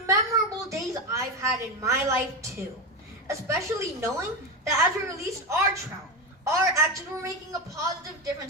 memorable days I've had in my life, too. Especially knowing that as we released our trout, our actions were making a positive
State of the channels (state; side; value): normal; both; correlation 0.15